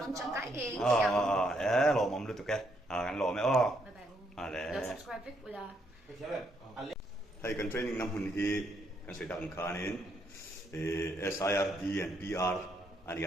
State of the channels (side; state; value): both; normal; correlation 0.74